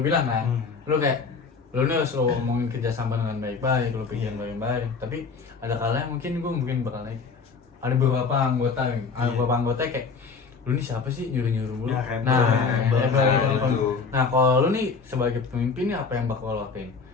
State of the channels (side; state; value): right; quieter; 5.0 dB